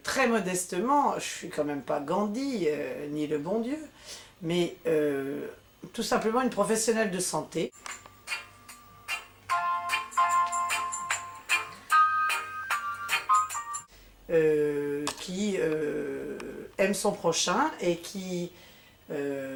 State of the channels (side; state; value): both; identical; correlation 1.00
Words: très modestement, je suis quand même pas Gandhi, ni le bon Dieu, mais tout simplement une professionnelle de santé. Qui aime son prochain et qui